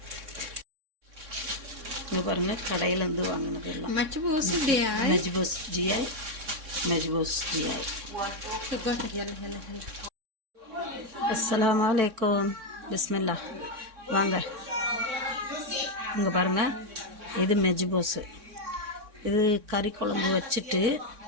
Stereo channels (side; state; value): left; late; 3.6 ms